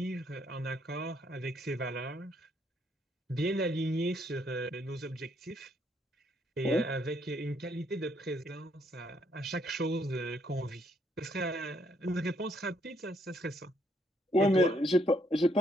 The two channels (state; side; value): normal; both; correlation 0.71